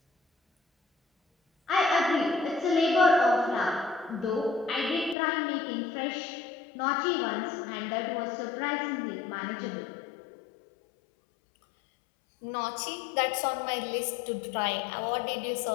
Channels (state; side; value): drops out; right; at 5.2 s